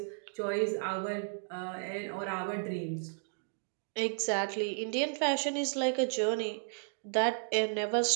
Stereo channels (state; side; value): silent; left; digital silence